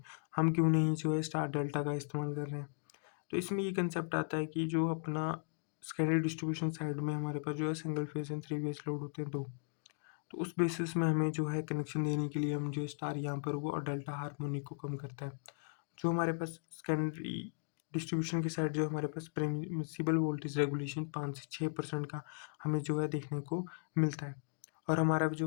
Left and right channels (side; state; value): right; silent; digital silence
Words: हम क्यों नहीं जो है स्टार डेल्टा का इस्तेमाल कर रहे हैं। तो इसमें ये कंसेप्ट आता है कि जो अपना सेकेंडरी डिस्ट्रीब्यूशन साइड में हमारे पास जो है single phase and 3 phase load होते हैं दो, तो उस बेसिस में हमें जो है कनेक्शन देने के लिए हम जो स्टार यहाँ पर वो और डेल्टा हार्मोनिक को कम करता है। जो हमारे पास सेकेंडरी डिस्ट्रीब्यूशन की साइड जो हमारे पास परमिसिबल वोल्टेज रेगुलेशन 5 से 6% का हमें जो है देखने को मिलता है, और हमारा